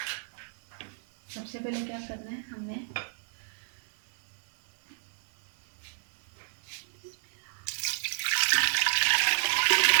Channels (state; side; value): silent; left; 56 dB below the other